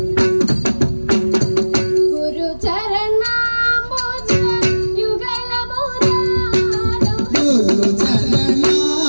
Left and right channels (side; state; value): both; inverted; correlation -1.00